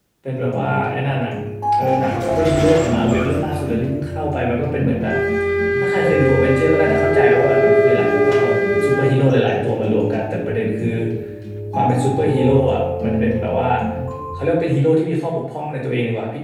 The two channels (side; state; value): both; identical; correlation 1.00